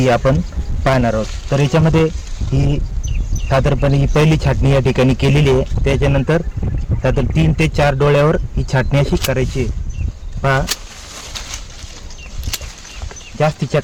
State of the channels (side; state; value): both; identical; correlation 1.00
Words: आपण पाहणार आहोत. तर याच्यामध्ये ही साधारणपणे ही पहिली छाटणी या ठिकाणी केलेली आहे. त्याच्यानंतर साधारण 3 ते 4 डोळ्यावर ही छाटणी अशी करायची आहे. पहा, जास्तीच्या